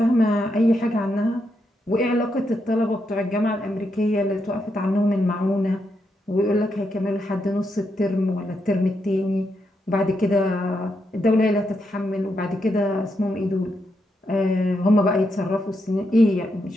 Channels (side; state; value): both; normal; correlation 0.82